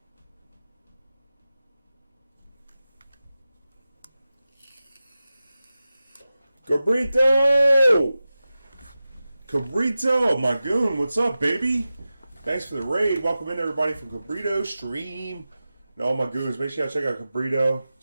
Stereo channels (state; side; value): inverted; both; correlation -0.94